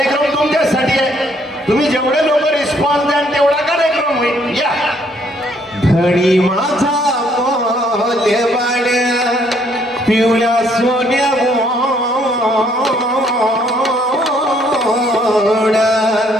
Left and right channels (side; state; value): both; normal; correlation 0.67